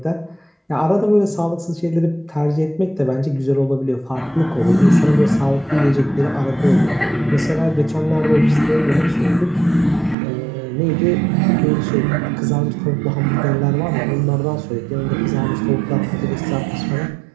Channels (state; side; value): drops out; left; at 10.2 s